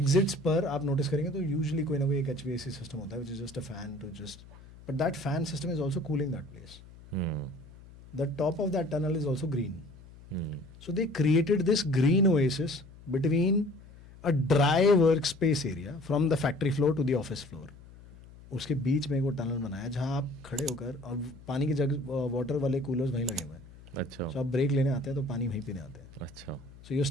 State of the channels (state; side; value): noise; left; hum, 20 dB below the sound